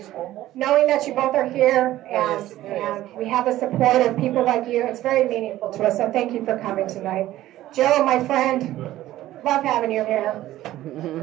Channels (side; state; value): left; quieter; 14.6 dB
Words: Knowing that you both are here and we have the support of people like you, it's very meaningful to us. So thank you for coming tonight. Joe, my friend, love having you here.